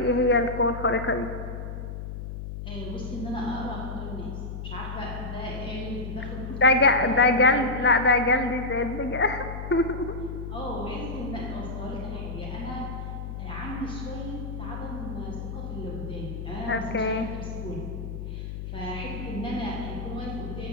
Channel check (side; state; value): left; noise; hum, 7 dB below the sound